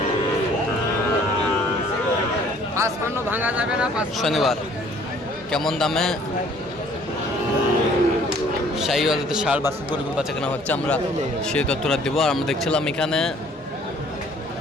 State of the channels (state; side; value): normal; both; correlation 0.57